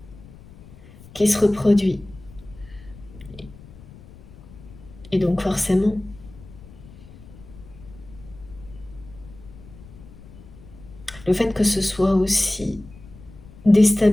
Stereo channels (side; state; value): left; noise; rumble, 19 dB below the sound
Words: qui se reproduit. Et donc forcément, le fait que ce soit aussi